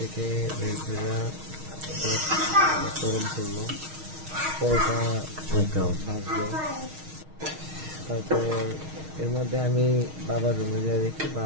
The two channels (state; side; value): late; left; 6.4 ms